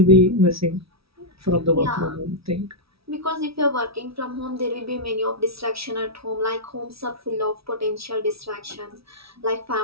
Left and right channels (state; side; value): late; left; 0.76 ms